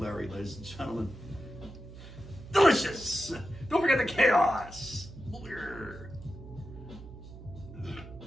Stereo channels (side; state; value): right; noise; hum, 15 dB below the sound